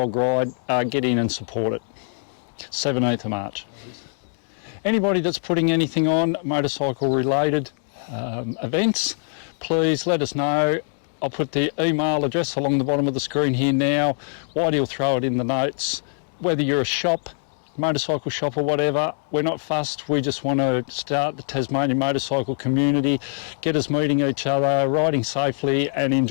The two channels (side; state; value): right; silent; 61 dB below the other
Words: Ride, get in and support it. 17th of March. Anybody that's putting anything on motorcycle related events, please let us know. I'll put the email address along the bottom of the screen here now. Whitey will throw it in the notes. Whether you're a shop, motorcycle shop or whatever, we're not fussed. We just want to start the Tasmanian motorcycle community, get us meeting each other, riding safely and